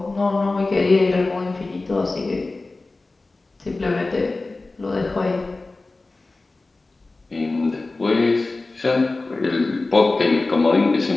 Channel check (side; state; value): right; quieter; 3.3 dB